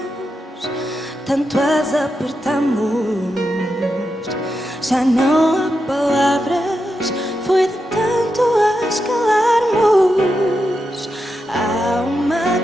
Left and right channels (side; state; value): both; normal; correlation 0.87